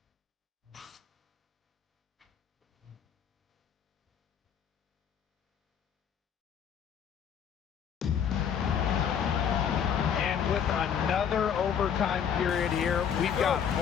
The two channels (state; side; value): quieter; right; 8.1 dB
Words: With another overtime period here, we've got